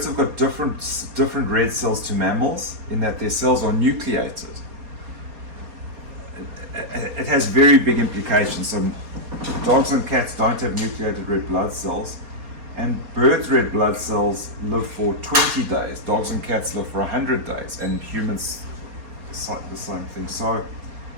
have got different red cells to mammals in that their cells are nucleated. It has very big implications. So dogs and cats don't have nucleated red blood cells, and birds' red blood cells live for 20 days. Dogs and cats live for 100 days, and humans the same thing. So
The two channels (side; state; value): left; late; 4.2 ms